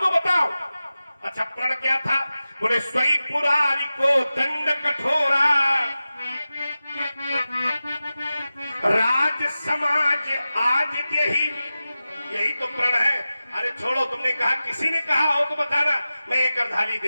बताओ। अच्छा, प्रण क्या था? बोले स्वई पुरारी को दंड कठोरा, राज समाज आज यही तो प्रण है। अरे छोड़ो, तुमने कहा, किसी ने कहा हो तो बताना, मैं एक अर्धाली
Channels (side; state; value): both; inverted; correlation -0.95